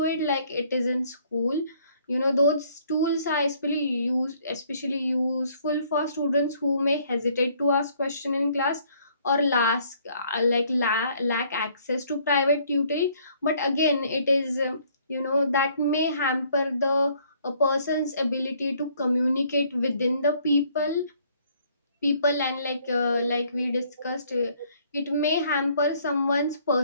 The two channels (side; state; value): both; inverted; correlation -0.63